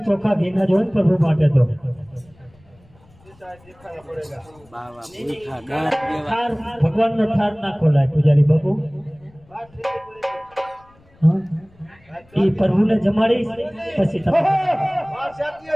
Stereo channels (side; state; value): left; noise; rumble, 29 dB below the sound